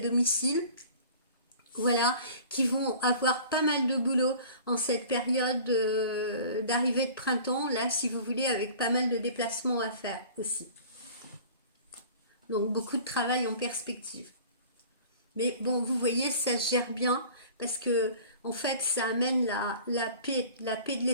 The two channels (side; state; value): both; inverted; correlation -0.44